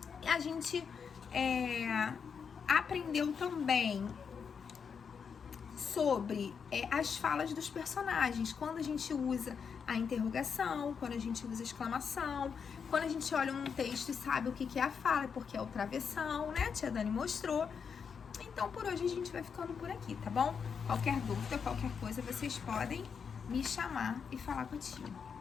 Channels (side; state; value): right; quieter; 6.4 dB